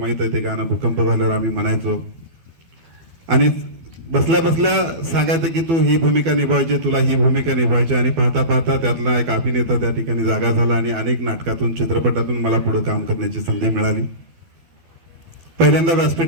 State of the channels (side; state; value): left; late; 12 ms